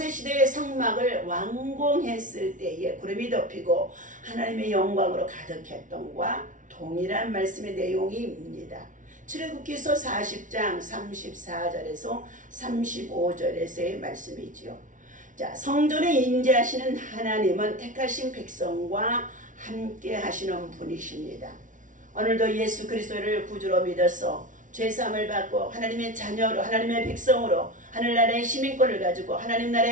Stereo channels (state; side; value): late; left; 0.37 ms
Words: 성막을 완공했을 때에 구름이 덮이고 하나님의 영광으로 가득했던과 동일한 말씀의 내용입니다. 출애굽기서 40장 34절에서 35절에서의 말씀이지요. 성전에 임재하시는 하나님은 택하신 백성과 함께 하시는 분이십니다. 오늘도 예수 그리스도를 구주로 믿어서 죄사함을 받고 하나님의 자녀로 하나님의 백성으로 하늘나라의 시민권을 가지고 하나님